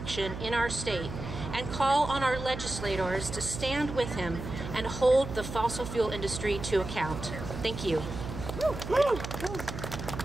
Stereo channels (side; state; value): right; noise; hum, 8 dB below the sound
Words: in our state and call on our legislators to stand with him and hold the fossil fuel industry to account. Thank you.